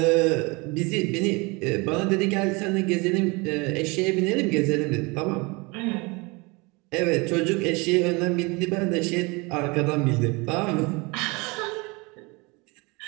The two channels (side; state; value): left; quieter; 26.9 dB